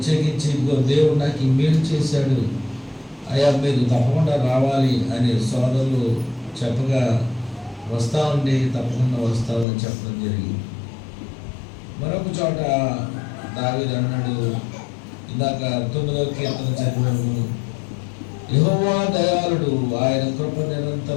దేవుడు నాకు ఈ మేలు చేశాడు, అయ్యా మీరు తప్పకుండా రావాలి అని సోదరులు చెప్పగా వస్తామండి, తప్పకుండా వస్తామని చెప్పడం జరిగింది. మరొక చోట దావీదు అన్నాడు, ఇందాక 9వ కీర్తన చదివాము, యెహోవా దయాళుడు, ఆయన కృప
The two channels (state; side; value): drops out; right; at 9.7 s